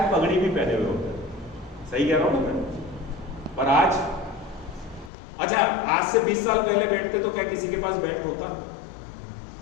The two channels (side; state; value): right; drops out; at 5.1 s